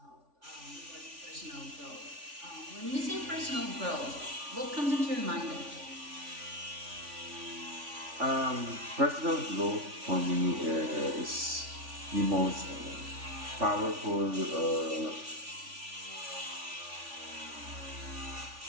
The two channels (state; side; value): late; left; 3.4 ms